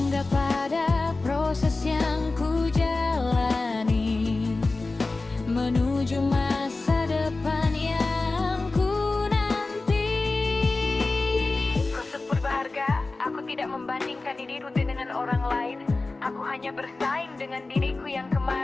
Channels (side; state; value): right; quieter; 3.4 dB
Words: pada proses yang ku jalani menuju masa depan yang ku nanti. Proses berharga, aku tidak membandingkan diriku dengan orang lain. Aku hanya bersaing dengan diriku yang